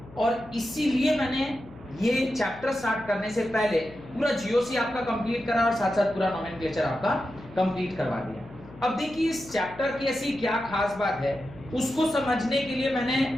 और इसीलिए मैंने ये चैप्टर स्टार्ट करने से पहले पूरा जीओसी आपका कंप्लीट करा और साथ साथ पूरा नोमेनक्लेचर आपका कंप्लीट करवा दिया। अब देखिए इस चैप्टर की ऐसी क्या खास बात है, उसको समझने के लिए मैंने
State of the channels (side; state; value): left; noise; hum, 20 dB below the sound